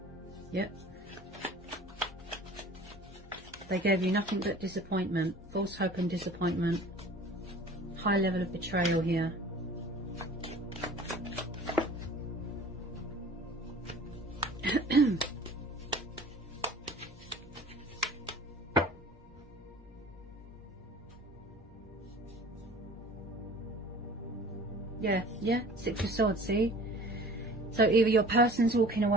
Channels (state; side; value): normal; both; correlation 0.45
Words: Yep. They gave you nothing but disappointment, false hope and disappointment. High level of betrayal here. Yeah, Six of Swords, see? So either your person's walking